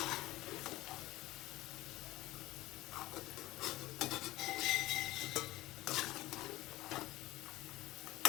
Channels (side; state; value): right; quieter; 17.7 dB